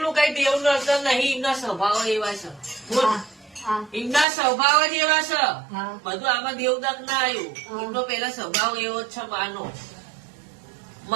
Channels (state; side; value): drops out; left; at 4.2 s